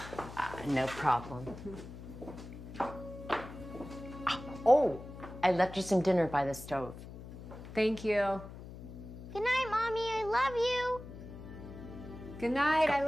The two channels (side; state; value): left; noise; hum, 13 dB below the sound